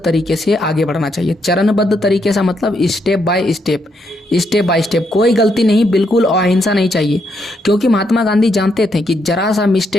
से आगे बढ़ना चाहिए। चरणबद्ध तरीके से मतलब स्टेप बाय स्टेप, कोई गलती नहीं, बिल्कुल अहिंसा नहीं चाहिए। क्योंकि महात्मा गांधी जानते थे कि जरा सा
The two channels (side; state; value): both; normal; correlation 0.77